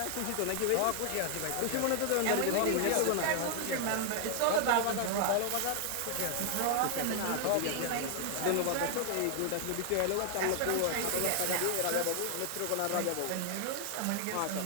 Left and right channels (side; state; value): both; different; correlation 0.00